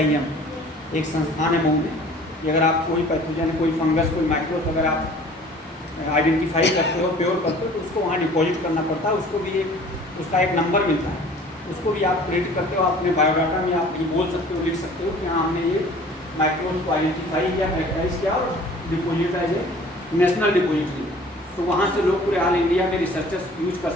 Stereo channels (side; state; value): both; normal; correlation 0.49